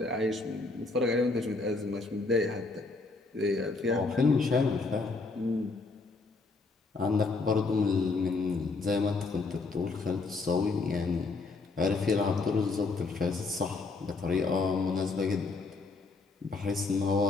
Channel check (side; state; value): right; quieter; 3.8 dB